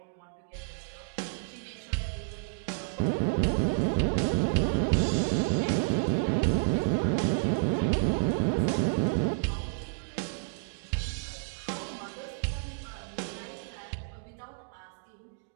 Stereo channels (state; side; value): silent; left; digital silence